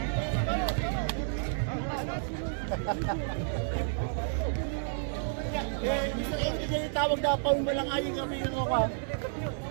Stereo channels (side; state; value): left; silent; digital silence